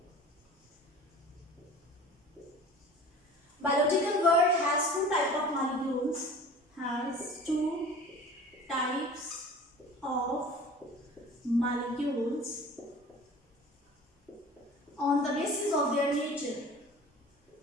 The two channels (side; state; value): both; normal; correlation 0.42